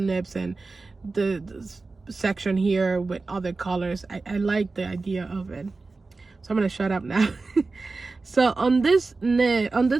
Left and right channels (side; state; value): left; quieter; 3.8 dB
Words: nibs and the section here with other colors. I like the idea of it. So I'm gonna shut up now. So on this